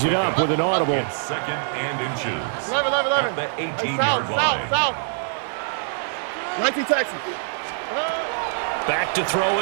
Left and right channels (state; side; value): silent; left; digital silence